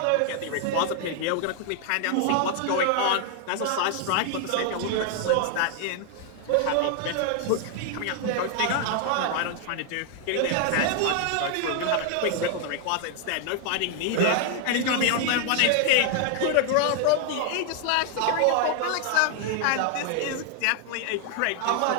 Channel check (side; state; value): both; different; correlation 0.00